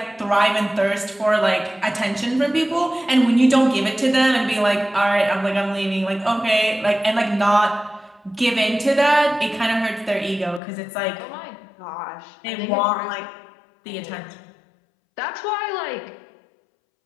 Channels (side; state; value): right; drops out; at 10.6 s